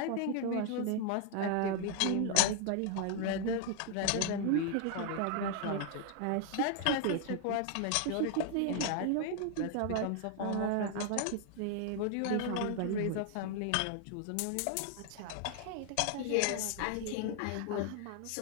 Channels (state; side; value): different; both; correlation 0.00